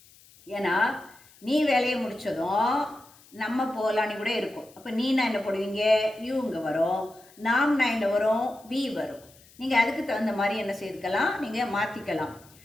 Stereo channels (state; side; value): noise; left; hiss, 26 dB below the sound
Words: ஏன்னா நீ வேலையை முடித்ததும் நம்ம போகலான்னு கூட இருக்கும். அப்போ நீனா என்ன போடுவீங்க, யூ இங்கே வரும், நாம்னா என்ன வரும், வி வரும். நீங்கள் அதுக்கு தகுந்த மாதிரி என்ன செய்துக்கலாம், நீங்கள் மாற்றிக்கலாம்.